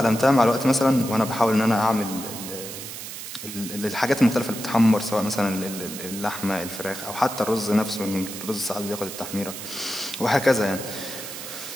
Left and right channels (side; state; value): right; noise; hiss, 9 dB below the sound